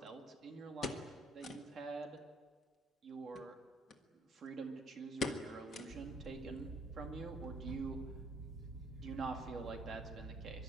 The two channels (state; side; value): normal; both; correlation 0.64